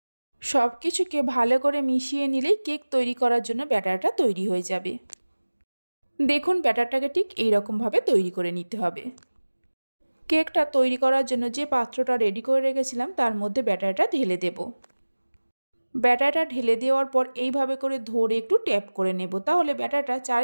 সব কিছুকে ভালো করে মিশিয়ে নিলেই কেক তৈরি করার জন্য ব্যাটারটা তৈরি হয়ে যাবে। দেখুন, ব্যাটারটাকে ঠিক এইরকমভাবে তৈরি করে নিতে হবে। কেকটা তৈরি করার জন্য যে পাত্রটা রেডি করে রেখেছিলাম তার মধ্যে ব্যাটারটা ঢেলে দেব। ব্যাটারটা ঢেলে দেওয়ার পর এইভাবে করে ধরে একটু ট্যাপ করে নেব, তাহলে ব্যাটারটা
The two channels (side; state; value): both; inverted; correlation -1.00